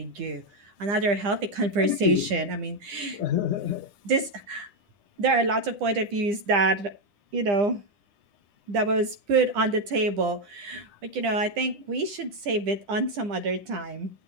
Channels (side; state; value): left; late; 9.9 ms